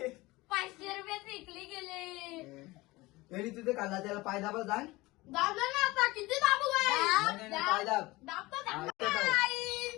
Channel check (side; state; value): right; quieter; 20.9 dB